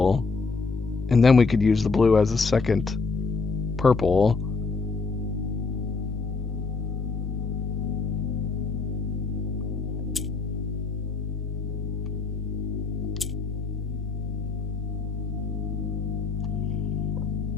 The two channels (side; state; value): right; quieter; 4.4 dB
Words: and then we could use the blue as a second purple.